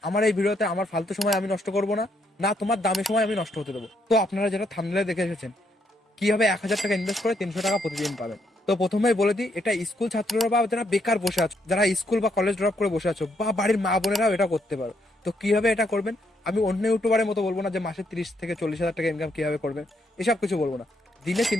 আমার এই ভিডিওতে আমার ফালতু সময় আমি নষ্ট করব না, না তোমার দামি সময় আমি নষ্ট হতে দেবো। তো আপনারা যেটা থাম্বনেলে দেখে এসেছেন, কিভাবে 1,000 টাকা ইনভেস্ট করে 300 টাকা প্রতিদিন পাবেন। তো প্রথমেই বলে দিই, এটা স্কুল ছাত্ররা বা যারা বেকার বসে আছো, যারা স্কুল বা কলেজ ড্রপ করে বসে আছো, বা বাড়ির মা বোনেরাও এটা করতে পারো। তো কিভাবে এটা করবেন, আমি অন্য ইউটিউবারের মতো বলবো না যে মাসে 30 থেকে 40 হাজার টাকা ইনকাম কিভাবে করবেন, এসব কিছু বলবো না। দিনে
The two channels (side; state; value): both; normal; correlation 0.75